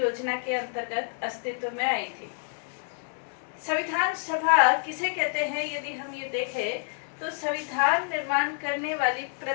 के अंतर्गत अस्तित्व में आई थी। संविधान सभा किसे कहते हैं? यदि हम ये देखें तो संविधान निर्माण करने वाली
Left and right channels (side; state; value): right; silent; 57 dB below the other